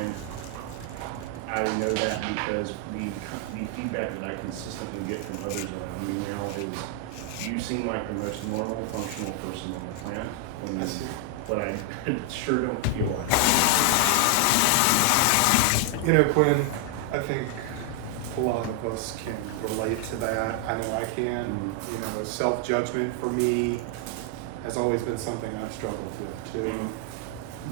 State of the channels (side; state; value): both; different; correlation 0.00